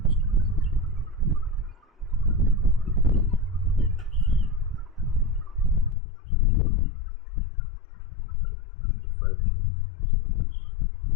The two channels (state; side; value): drops out; right; at 6.0 s